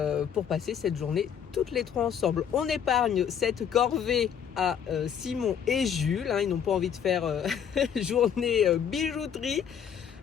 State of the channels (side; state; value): right; quieter; 8.2 dB